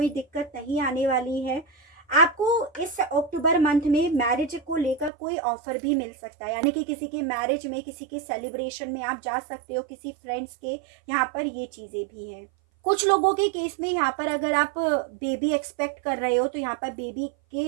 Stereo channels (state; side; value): drops out; left; at 5.1 s